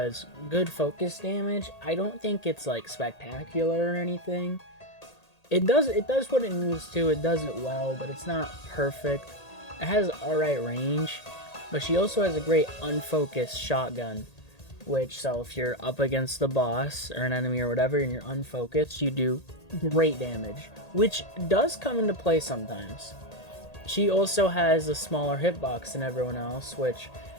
good focus damage. I don't think it's like spectacular or anything. It does what it needs to. It does it well, but it's not perfect. It has alright range, but she also has a great unfocused shotgun. So if you're up against the boss or an enemy or whatever and you're unfocused, you do great damage, which does come into play sometimes. She also has a smaller hitbox than everyone else, which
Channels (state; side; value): late; right; 1.8 ms